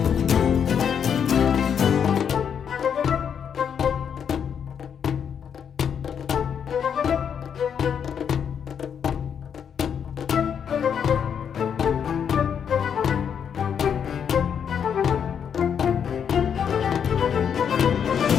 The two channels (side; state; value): right; quieter; 7.8 dB